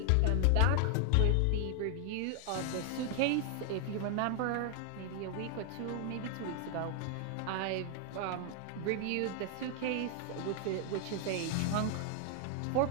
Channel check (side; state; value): both; different; correlation 0.00